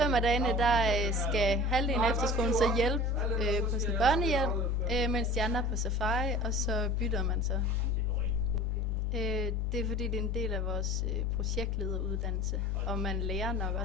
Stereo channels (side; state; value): both; normal; correlation 0.40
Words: af dagene, der skal halvdelen af efterskolen så hjælpe på sin børnehjem, mens de andre er på safari, og så bytter man så. Det er fordi, det er en del af vores projektlederuddannelse, og man lærer nok